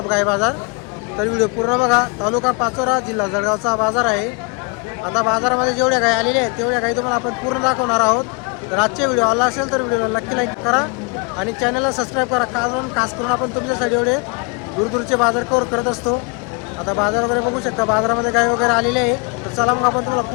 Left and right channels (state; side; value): quieter; right; 32.1 dB